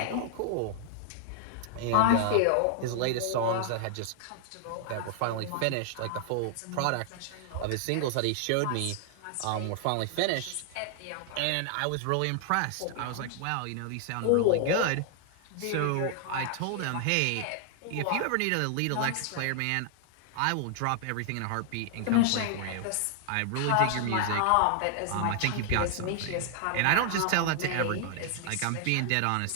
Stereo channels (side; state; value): both; different; correlation 0.00